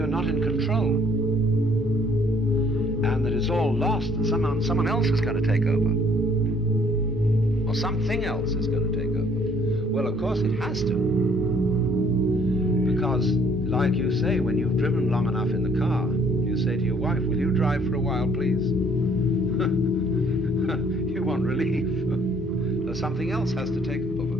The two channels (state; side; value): noise; left; rumble, 28 dB below the sound